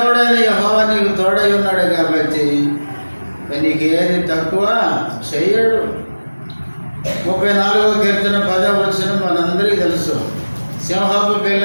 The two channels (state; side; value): inverted; both; correlation -1.00